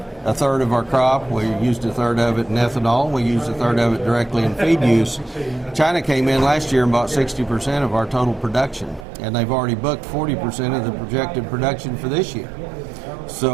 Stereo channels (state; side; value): drops out; left; at 9.1 s